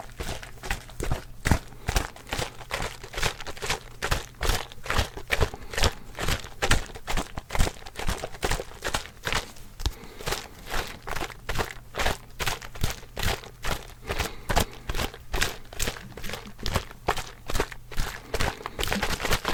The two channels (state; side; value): identical; both; correlation 1.00